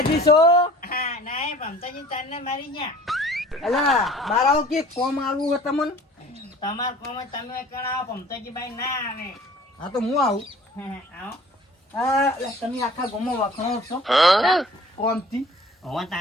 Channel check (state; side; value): normal; both; correlation 0.49